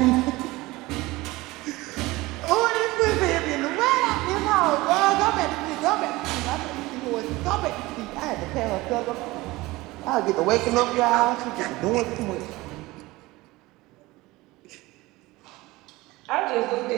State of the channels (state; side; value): quieter; left; 20.3 dB